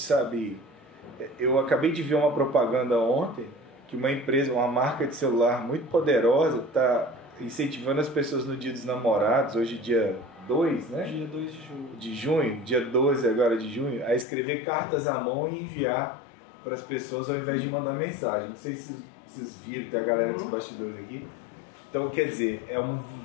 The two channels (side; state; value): right; drops out; at 14.2 s